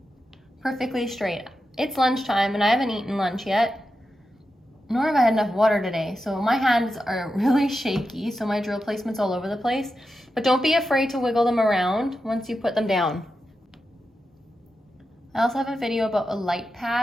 perfectly straight. It's lunchtime and I haven't eaten lunch yet, nor have I had enough water today. So my hands are really shaky, so my drill placement's all over the place. But don't be afraid to wiggle them around once you put them down. I also have a video about a light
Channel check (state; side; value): normal; both; correlation 0.89